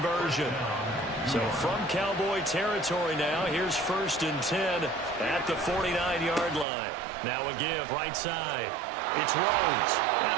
So from Cowboy territory now, here's 1st and 10 at the 49-yard line. Now a give right side. It's Rhodes.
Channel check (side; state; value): left; drops out; at 6.7 s